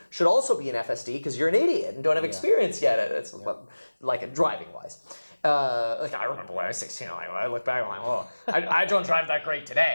should also be an FSD because you're an idiot and don't have experience yet. It's like driving wise. I remember when I was 16, I look back, I'm like, oh, I don't drive that great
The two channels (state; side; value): inverted; both; correlation -1.00